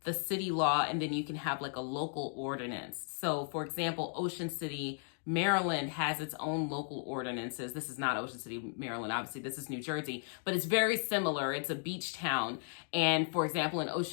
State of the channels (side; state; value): right; silent; 54 dB below the other